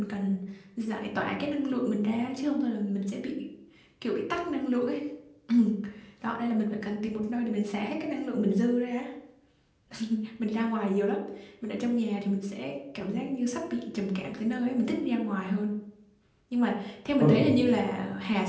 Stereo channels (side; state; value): both; identical; correlation 1.00